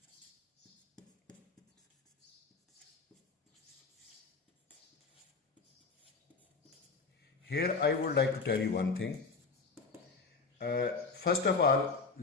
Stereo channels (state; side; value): quieter; right; 4.6 dB